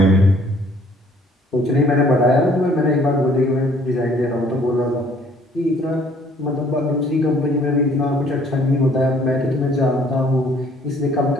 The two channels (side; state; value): both; normal; correlation 0.59